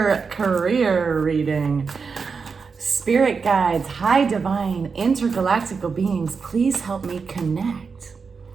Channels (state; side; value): quieter; left; 5.2 dB